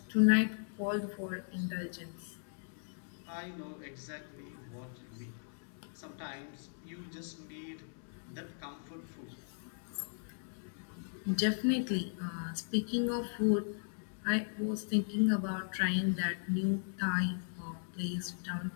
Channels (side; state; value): right; silent; digital silence